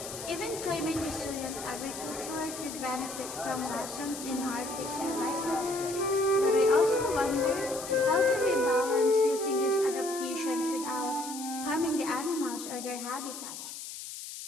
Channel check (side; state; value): left; noise; hiss, 10 dB below the sound